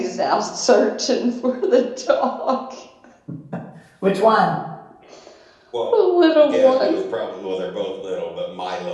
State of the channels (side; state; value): both; identical; correlation 1.00